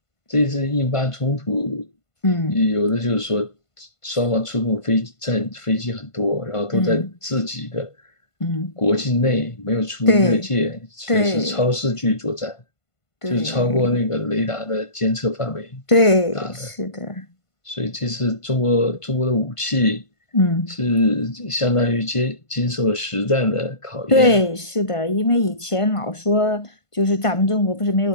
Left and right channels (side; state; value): right; late; 1.5 ms